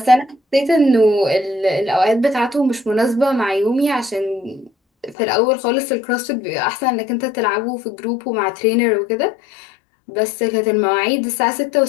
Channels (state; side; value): drops out; right; at 5.2 s